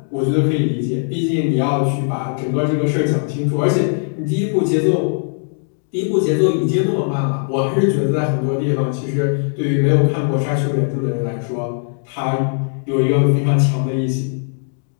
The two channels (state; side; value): silent; right; digital silence